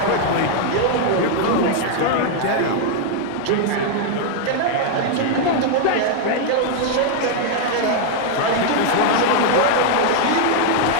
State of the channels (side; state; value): both; different; correlation 0.00